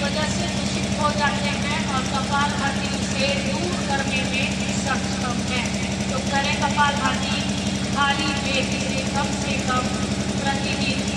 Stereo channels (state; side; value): identical; both; correlation 1.00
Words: वजह से दूषित हो जाते हैं और कपालभाति से दूर करने में सक्षम है। तो करें कपालभाति खाली पेट से कम प्रतिदिन